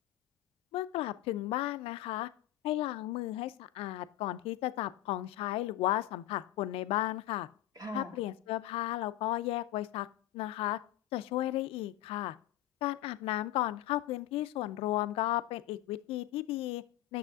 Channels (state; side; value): quieter; right; 14.8 dB